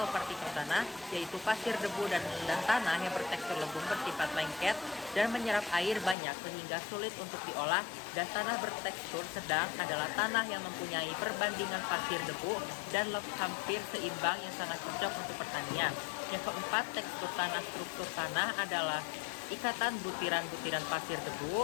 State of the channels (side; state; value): right; drops out; at 6.2 s